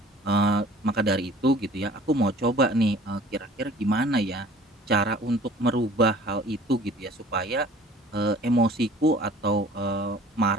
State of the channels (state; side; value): normal; both; correlation 0.49